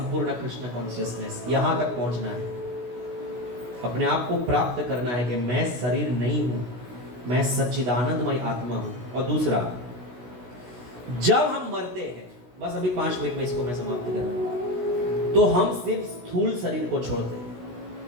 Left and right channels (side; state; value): left; late; 16 ms